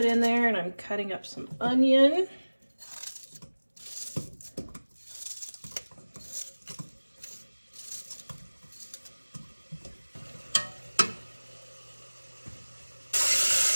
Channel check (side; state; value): both; inverted; correlation -1.00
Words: in there and I'm cutting up some onion.